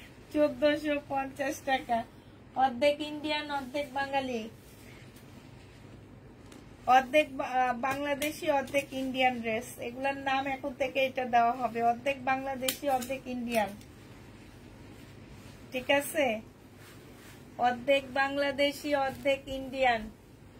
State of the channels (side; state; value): both; identical; correlation 1.00